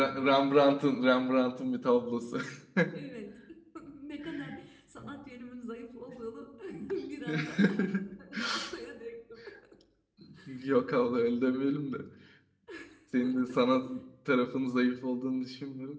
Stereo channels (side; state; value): both; identical; correlation 1.00